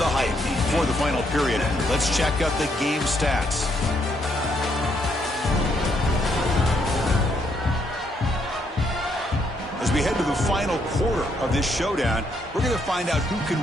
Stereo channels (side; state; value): both; normal; correlation 0.73